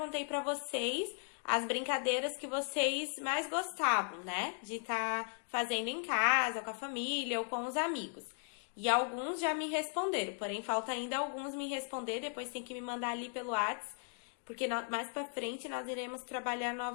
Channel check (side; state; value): right; silent; 53 dB below the other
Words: para vocês as brincadeiras que vocês mais gostavam, né? De estar fazendo em casa, ou com a família, ou com os amigos. E alguns já me responderam, porém falta ainda alguns me responder, depois tem que me mandar ali pelo WhatsApp, porque mais pra frente nós iremos trabalhar